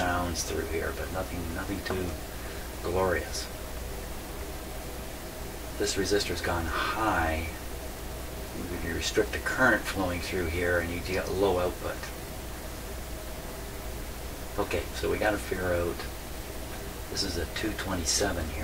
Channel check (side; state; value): both; identical; correlation 1.00